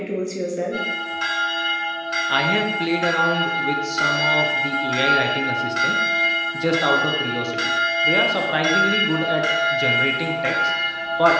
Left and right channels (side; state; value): both; identical; correlation 1.00